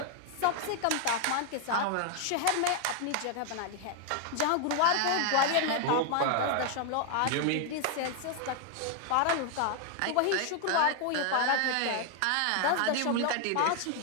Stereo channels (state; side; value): different; both; correlation 0.00